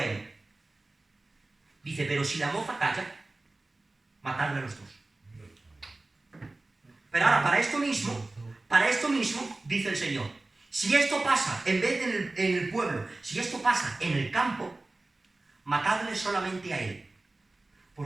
él. Dice, pero si la moza calla, matadlo a los dos. Pero ahora, para esto mismo, dice el Señor, si esto pasa, en vez de en el pueblo, si esto pasa en el campo, matadle solamente a él.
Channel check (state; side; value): quieter; left; 3.0 dB